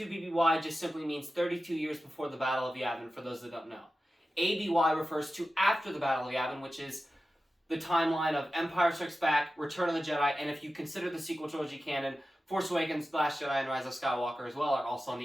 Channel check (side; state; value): both; normal; correlation 0.93